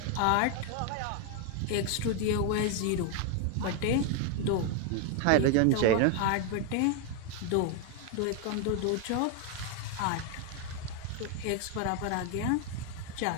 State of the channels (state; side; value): different; both; correlation 0.01